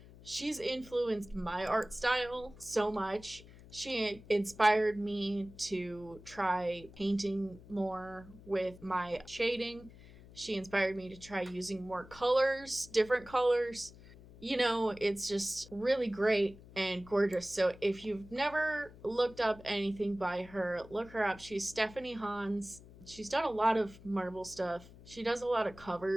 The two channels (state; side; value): noise; left; hum, 20 dB below the sound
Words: She's influenced my art style so much. She inspired me to try painting more with my shading. She inspired me to try using more colors, different colors. It's just really great and gorgeous. So if you've never looked up anything by her, look her up. She's Stephanie Hans. She's done a lot of Marvel stuff. She does a lot of